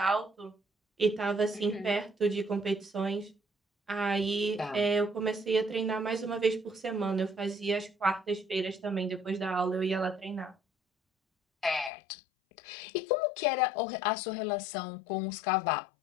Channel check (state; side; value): drops out; right; at 11.9 s